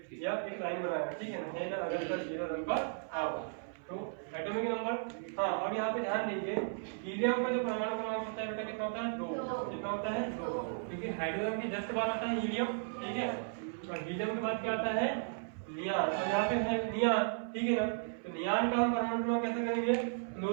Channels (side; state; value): left; silent; 54 dB below the other